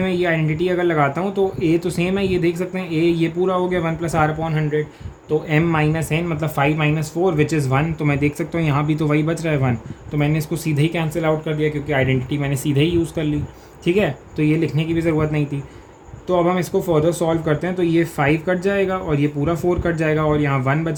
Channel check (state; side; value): identical; both; correlation 1.00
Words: मैं ये आइडेंटिटी अगर लगाता हूँ तो a तो सेम है, ये देख सकते हैं a ये पूरा हो गया 1 प्लस आर अपॉन 100, तो m माइनस n मतलब 5 माइनस 4 विच इज़ 1। तो मैं देख सकता हूँ यहाँ भी तो वही बच रहा है 1, तो मैंने इसको सीधे ही कैंसिल आउट कर दिया, क्योंकि आइडेंटिटी मैंने सीधे ही यूज़ कर ली। ठीक है, तो ये लिखने की भी ज़रूरत नहीं थी। तो अब हम इसको फर्दर सॉल्व करते हैं, तो ये 5 कट जाएगा और ये पूरा 4 कट जाएगा और यहाँ 1